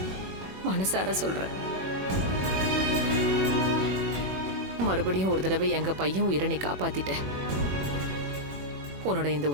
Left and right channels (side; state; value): left; late; 21 ms